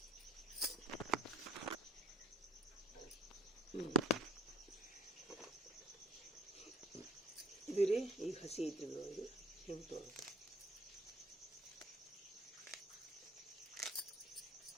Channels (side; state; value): both; normal; correlation 0.54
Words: ಇದು ರೀ ಈಗ ಹಸಿ ಐತ್ರಿ. ಇದು ಹಿಂಗೆ ತೊಗೋಬೇಕು.